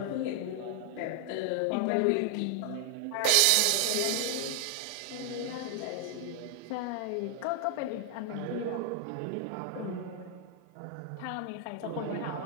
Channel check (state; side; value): different; both; correlation 0.00